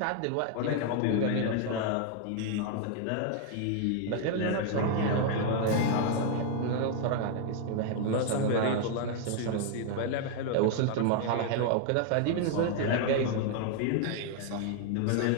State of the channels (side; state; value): both; different; correlation 0.00